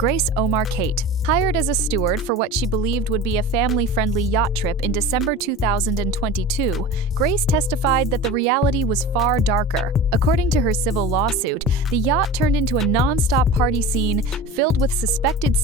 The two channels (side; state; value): both; normal; correlation 0.33